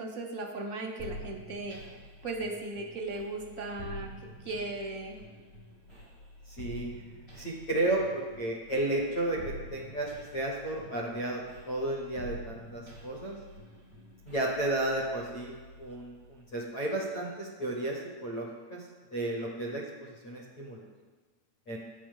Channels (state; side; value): late; right; 8.8 ms